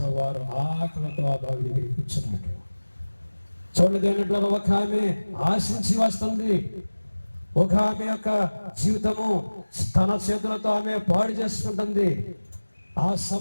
వారు ఆకలితో ఆ బావి దగ్గర కూర్చున్నాడు. చూడండి దేవునిలో ఒక ఆమె ఆశించి వస్తుంది. ఒక ఆమె యొక్క జీవితము తన చేతులతో ఆమె పాడు చేసుకుంటుంది. ఆ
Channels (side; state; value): both; inverted; correlation -1.00